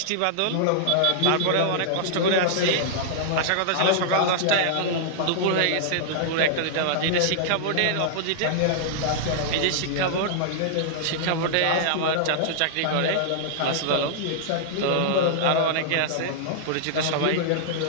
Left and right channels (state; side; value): different; both; correlation -0.01